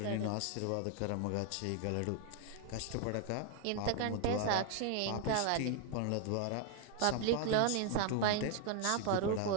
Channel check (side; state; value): both; different; correlation 0.00